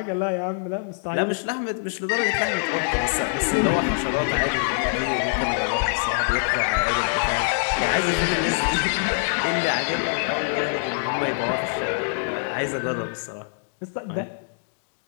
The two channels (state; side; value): silent; right; digital silence